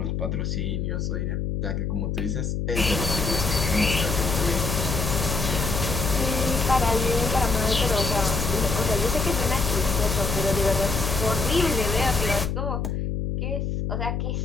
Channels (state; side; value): noise; left; hum, 1 dB below the sound